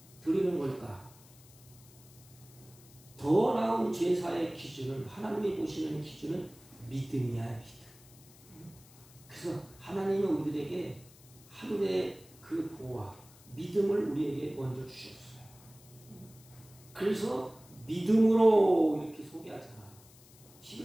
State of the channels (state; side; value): noise; left; hiss, 24 dB below the sound